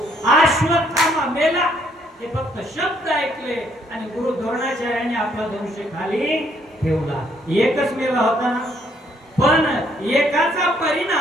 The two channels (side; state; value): both; normal; correlation 0.68